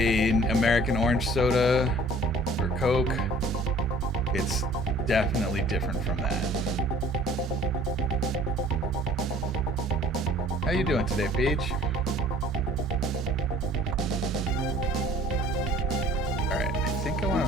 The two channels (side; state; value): both; normal; correlation 0.52